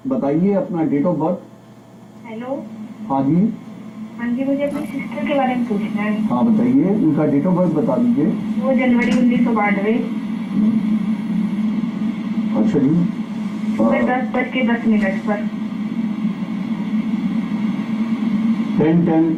बताइए अपना डेट ऑफ बर्थ। हेलो। हाँ जी। हाँ जी, मुझे अपनी सिस्टर के बारे में पूछना है। हाँ बताइए, उनका डेट ऑफ बर्थ बता दीजिए। वो जनवरी 1992। अच्छा जी। सुबह 10:10 पर 10:10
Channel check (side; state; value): both; identical; correlation 1.00